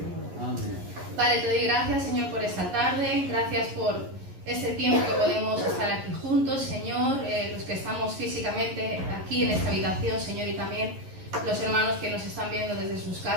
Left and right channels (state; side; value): late; left; 11 ms